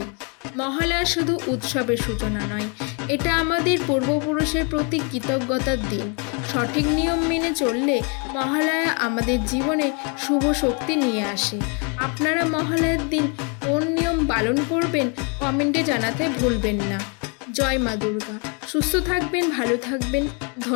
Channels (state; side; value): quieter; right; 35.8 dB